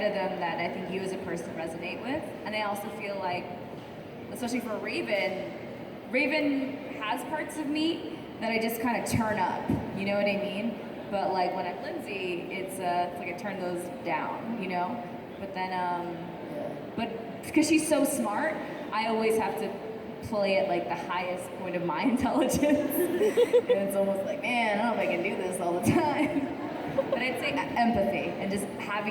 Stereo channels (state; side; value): identical; both; correlation 1.00